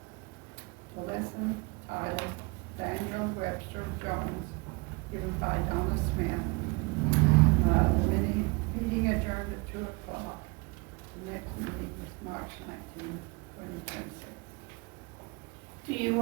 listen, title, Daniel Webster Jones, given by Donna Smith. The meeting adjourned at 2 o'clock. The next meeting is March 19, 2026. Do you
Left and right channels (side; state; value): left; quieter; 27.9 dB